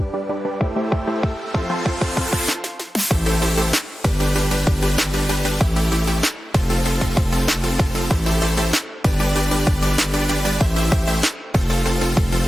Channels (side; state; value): both; normal; correlation 0.94